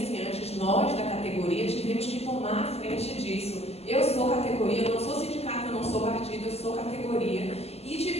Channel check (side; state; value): right; late; 0.30 ms